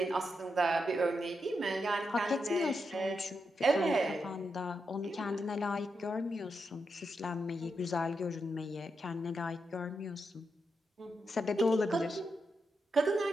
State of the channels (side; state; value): both; normal; correlation 0.85